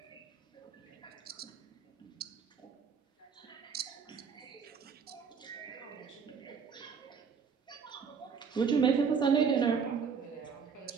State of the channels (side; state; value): left; quieter; 6.1 dB